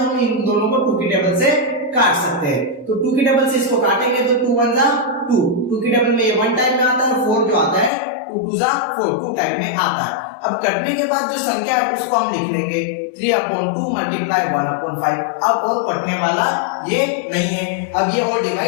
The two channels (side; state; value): right; drops out; at 7.9 s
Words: हम इन दोनों को 2 की टेबल से काट सकते हैं। तो 2 की टेबल से इसको काटेंगे तो 2 1 जा 2, 2 की टेबल में ये 1 टाइम में आता है, और 4 जो आता है 2 2 जा 4, 2 टाइम में आता है। अब कटने के बाद जो संख्या है उसको हम लिख लेंगे 3/2 मल्टीप्लाई 1/5। अब और कटने वाला ये नहीं है, अब ये और